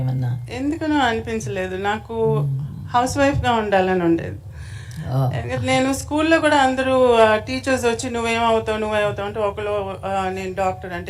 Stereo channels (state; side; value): identical; both; correlation 1.00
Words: ఏమన్నా? ఎందుకనో అనిపించలేదు. నాకు హౌస్ వైఫ్గా ఉండాలని ఉండేది. నేను స్కూల్లో కూడా అందరూ టీచర్స్ వచ్చి నువ్వేమవుతావు అంటే ఒకళ్ళు నేను డాక్టర్